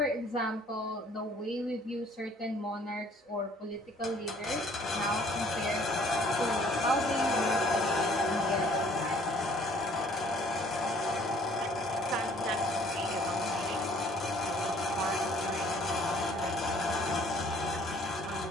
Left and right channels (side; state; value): both; normal; correlation 0.58